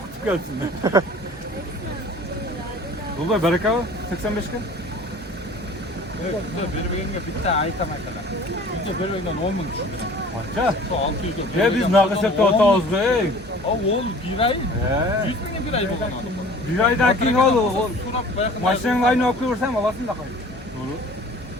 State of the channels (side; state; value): both; normal; correlation 0.46